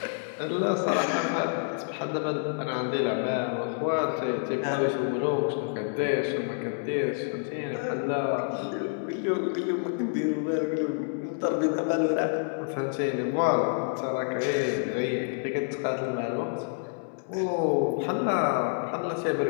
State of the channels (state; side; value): silent; right; digital silence